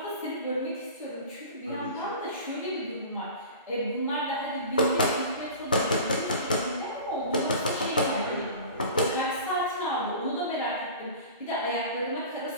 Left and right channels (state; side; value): inverted; both; correlation -0.37